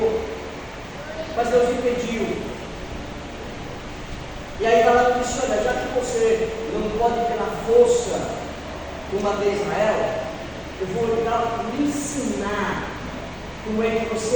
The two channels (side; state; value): both; identical; correlation 1.00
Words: mas Deus impediu. E aí Balaão disse: olha, já que você não pode ter a força combater Israel, eu vou lhe ensinar como é que